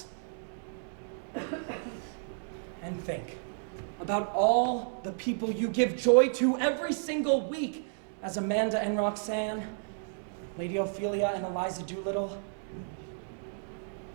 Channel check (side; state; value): left; silent; digital silence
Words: And think about all the people you give joy to every single week as Amanda and Roxanne, Lady Ophelia and Eliza Doolittle.